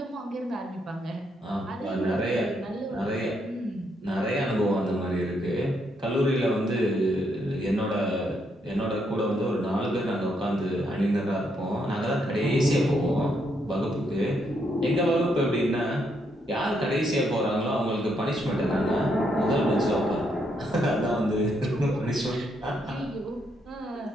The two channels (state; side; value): normal; both; correlation 0.76